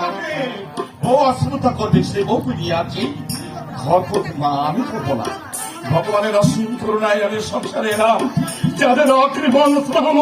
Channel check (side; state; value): both; identical; correlation 1.00